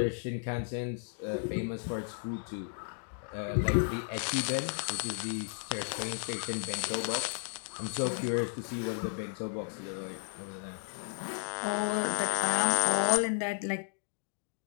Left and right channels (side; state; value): right; silent; digital silence